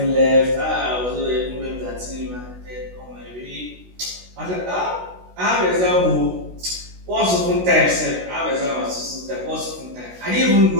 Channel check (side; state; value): left; late; 16 ms